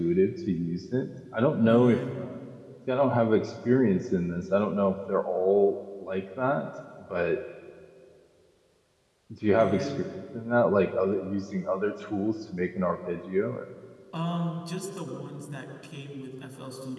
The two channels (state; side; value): identical; both; correlation 1.00